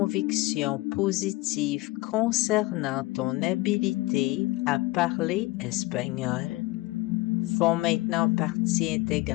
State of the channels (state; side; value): quieter; right; 20.5 dB